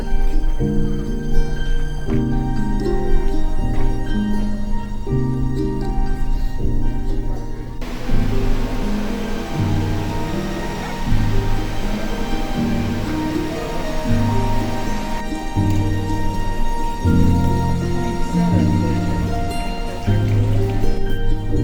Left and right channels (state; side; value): identical; both; correlation 1.00